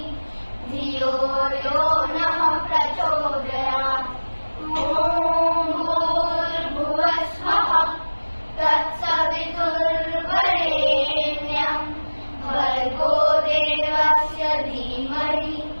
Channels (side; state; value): both; inverted; correlation -1.00